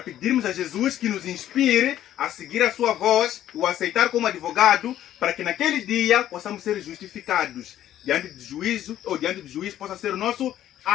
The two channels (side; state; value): right; quieter; 12.1 dB